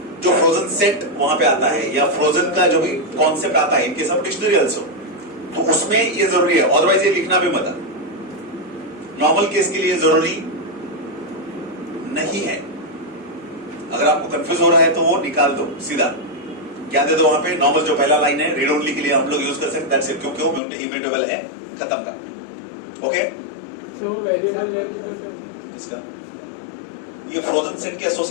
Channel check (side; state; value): right; drops out; at 20.6 s